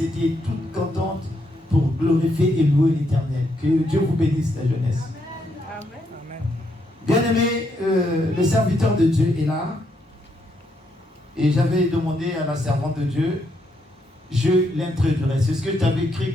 toute contente pour glorifier et louer l'Éternel. Que Dieu vous bénisse, la jeunesse. Amen. Bien-aimé, le serviteur de Dieu est là. Et j'avais demandé à la servante de Dieu, je l'introduirai. C'est ce que je t'avais écrit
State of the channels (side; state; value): both; normal; correlation 0.77